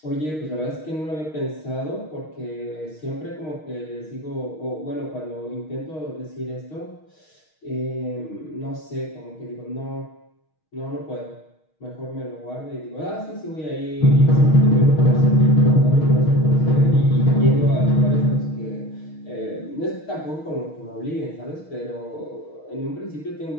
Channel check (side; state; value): right; late; 6.4 ms